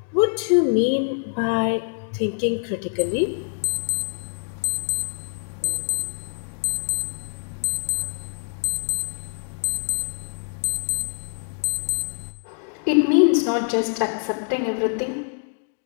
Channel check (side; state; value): right; silent; 59 dB below the other